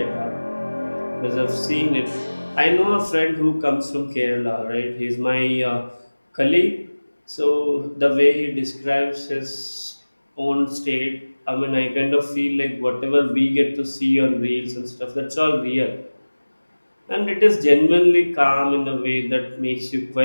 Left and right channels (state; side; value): inverted; both; correlation -1.00